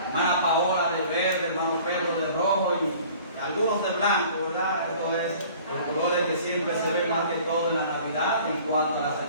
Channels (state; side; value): inverted; both; correlation -0.49